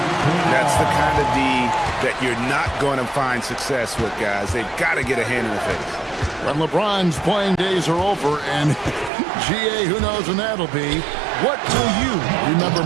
That's the kind of D that you're not going to find success with, guys. They've got to get a hand in the face. When LeBron's playing days are over, and GA, who knows when that'll be, what will you remember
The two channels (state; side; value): drops out; left; at 9.1 s